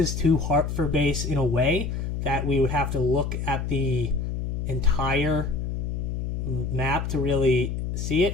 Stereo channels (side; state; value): left; noise; hum, 3 dB below the sound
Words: to Hartford Base in a way that we would have to look at the entire map to really see